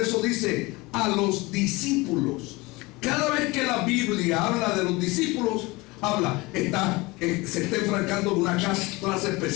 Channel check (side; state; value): right; quieter; 23.2 dB